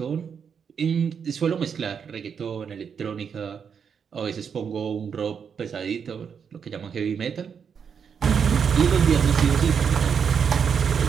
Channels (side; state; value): left; quieter; 6.9 dB